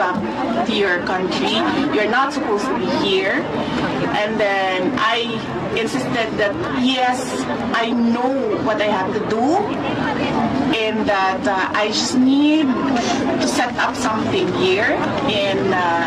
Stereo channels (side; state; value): both; identical; correlation 1.00